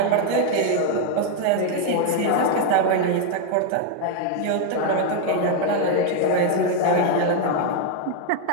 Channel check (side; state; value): both; different; correlation 0.01